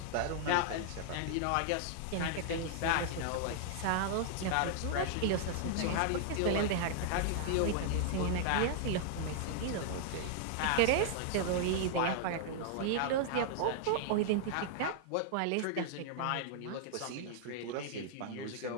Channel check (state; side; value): different; both; correlation -0.01